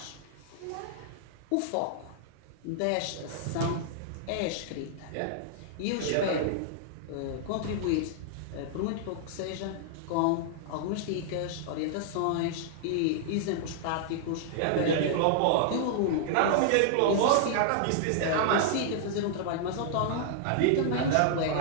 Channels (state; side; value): different; both; correlation -0.01